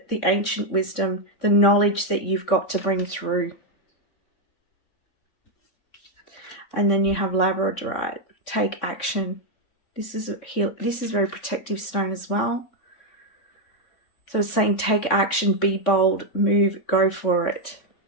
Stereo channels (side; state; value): right; late; 3.6 ms